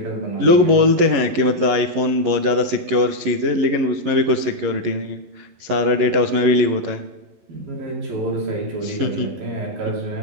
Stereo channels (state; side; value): late; left; 11 ms